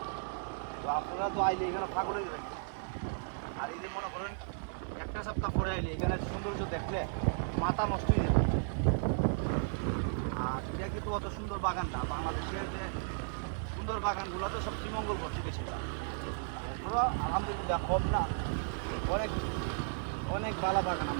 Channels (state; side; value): silent; left; digital silence